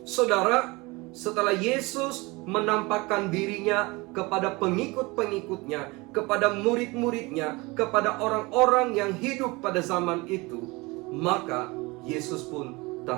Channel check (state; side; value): quieter; left; 24.2 dB